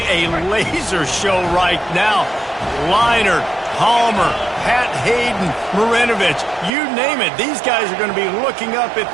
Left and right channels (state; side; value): drops out; left; at 6.7 s